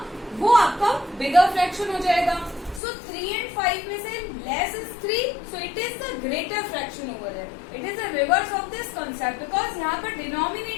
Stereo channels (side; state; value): right; drops out; at 2.8 s